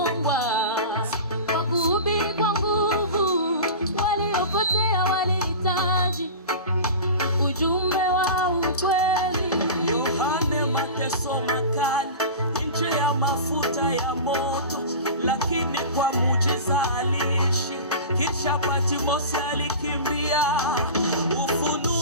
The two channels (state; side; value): inverted; both; correlation -0.32